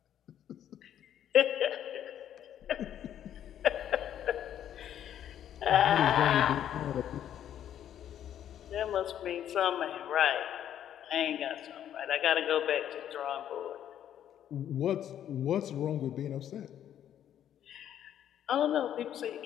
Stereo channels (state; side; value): quieter; right; 10.4 dB